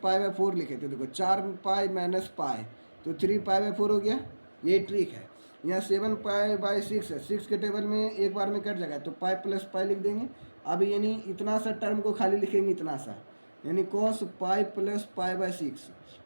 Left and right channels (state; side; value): inverted; both; correlation -1.00